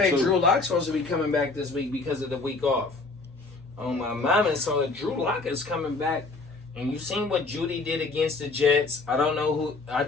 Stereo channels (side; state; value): right; quieter; 3.7 dB